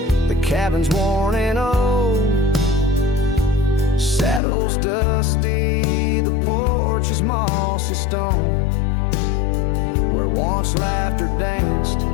the cabin's worn and old, saddle's dusty, the porch is mossy stone. Where once laughter danced,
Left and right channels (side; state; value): right; drops out; at 4.4 s